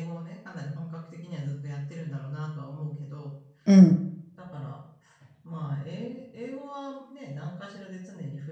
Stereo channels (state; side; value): identical; both; correlation 1.00